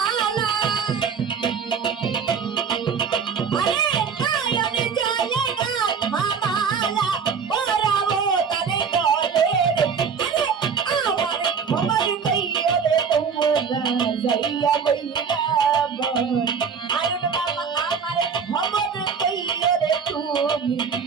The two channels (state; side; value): quieter; left; 6.3 dB